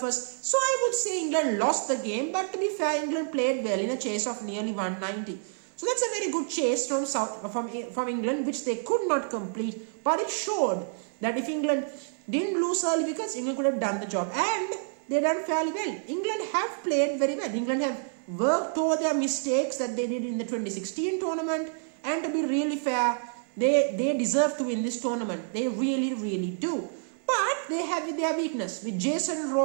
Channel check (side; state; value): left; silent; digital silence